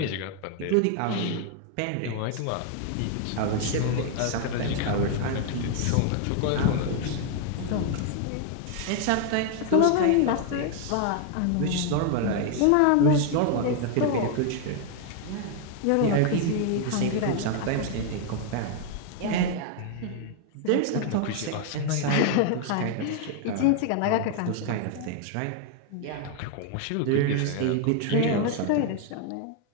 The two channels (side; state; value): both; different; correlation 0.00